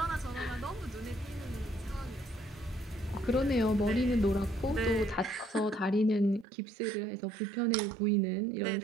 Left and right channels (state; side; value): drops out; left; at 6.5 s